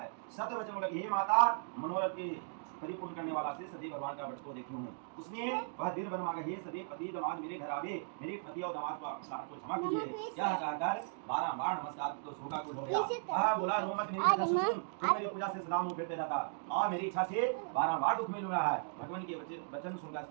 सत्य वचन लगी, हे माता मनोरथ की परिपूर्ण करने वाला से सदैव भगवान का भक्त को देखी हूँ। उसने वह दिल बन मांगा, हे सदैव पति दामाद मेरे घर आवे, मेरे पति और दामाद को क्षमा कीजिए। यह कहकर बारंबार नमस्कार तो शोका कुल हो गया। वह बोला, रो मत, मेरी कथा सुन, तू मेरी पूजा से सदा मुंह फेरते रहता और मेरी इच्छा से बारंबार दुख मिल रहा है। भगवान के वचन सुनकर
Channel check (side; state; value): left; silent; digital silence